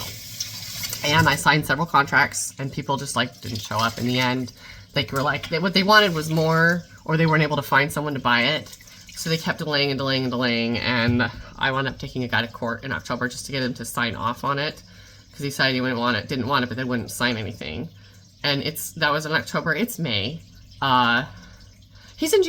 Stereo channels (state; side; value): identical; both; correlation 1.00